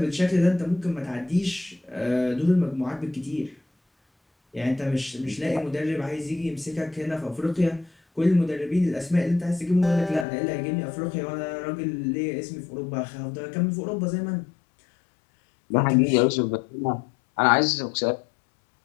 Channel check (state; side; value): drops out; right; at 10.2 s